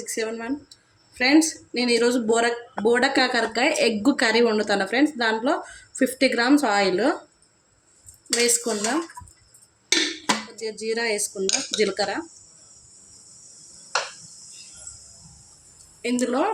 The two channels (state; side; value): identical; both; correlation 1.00